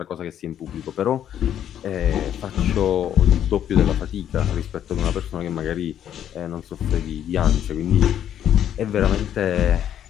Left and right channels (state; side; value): quieter; right; 10.2 dB